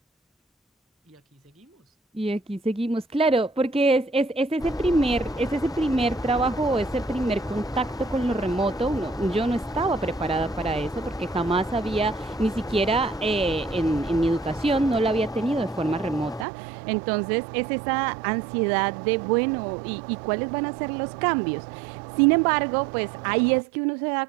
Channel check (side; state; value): left; drops out; at 16.4 s